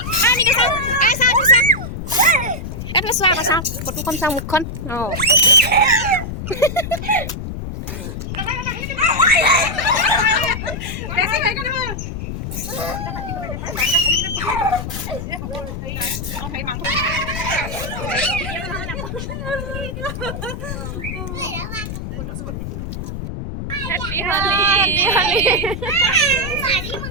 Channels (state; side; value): noise; left; rumble, 6 dB below the sound